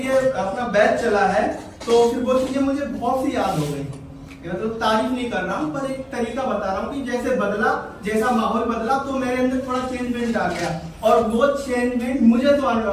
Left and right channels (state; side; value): identical; both; correlation 1.00